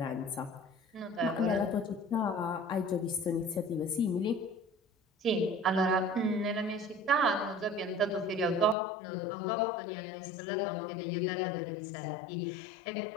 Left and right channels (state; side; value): drops out; right; at 8.8 s